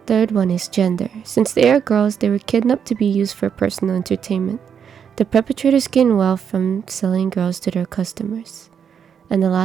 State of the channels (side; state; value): left; quieter; 7.6 dB